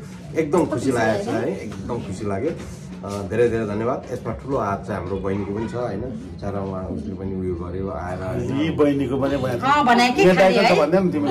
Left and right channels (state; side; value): identical; both; correlation 1.00